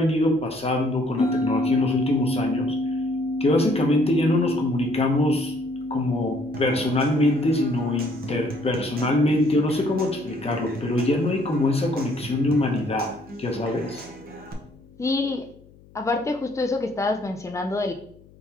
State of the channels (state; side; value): noise; left; hum, 26 dB below the sound